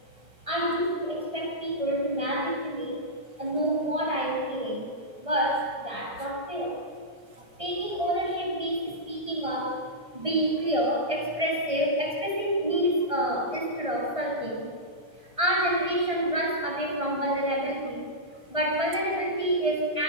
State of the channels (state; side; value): late; left; 1.6 ms